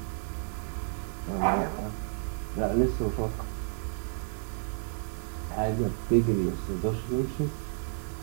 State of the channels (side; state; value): left; silent; 57 dB below the other